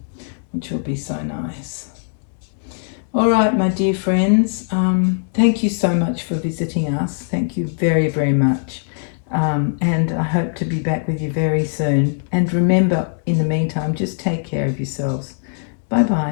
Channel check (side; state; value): right; silent; digital silence